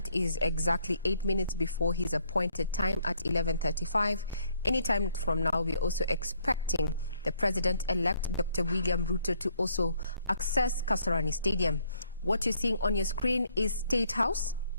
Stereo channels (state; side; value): inverted; both; correlation -0.67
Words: is exactly 8 minutes before his appointed time at 11:35. Anytime from now, we're also expecting the President-elect, Dr. William Ruto, to also access Kasarani Stadium. What you're seeing on your screen is State House,